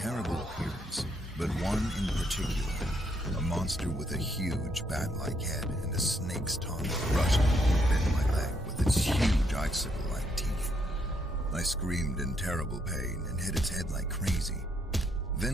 appearance, but one in particular, a monster with a huge bat-like head and a snake's tongue, rushed and bit my leg with its huge icicle-like teeth. I screamed in terrible pain and hit its head like crazy.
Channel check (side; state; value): both; normal; correlation 0.74